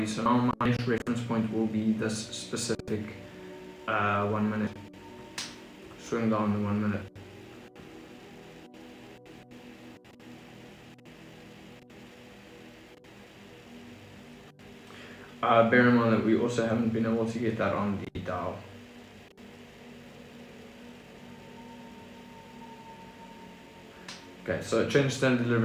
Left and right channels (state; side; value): identical; both; correlation 1.00